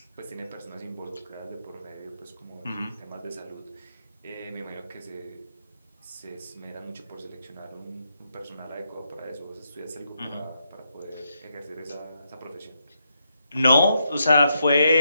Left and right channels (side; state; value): both; inverted; correlation -0.81